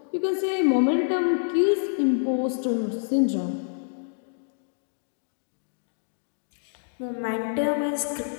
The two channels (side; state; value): right; silent; digital silence